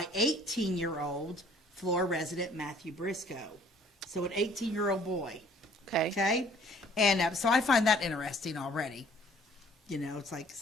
18-year-old Flora resident Matthew Briscoe. So an 18-year-old boy. Okay. Okay? And so I find that interesting already. You know, it's like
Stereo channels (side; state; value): both; normal; correlation 0.57